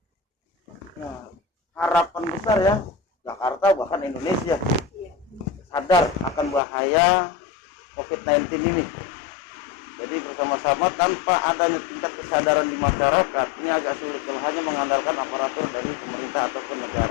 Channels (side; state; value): right; drops out; at 6.6 s